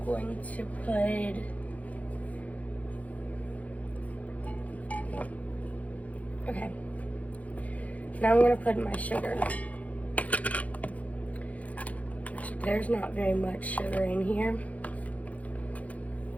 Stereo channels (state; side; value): late; right; 0.070 ms